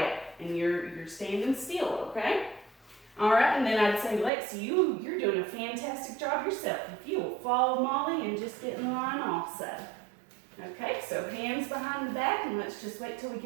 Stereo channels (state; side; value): drops out; left; at 4.3 s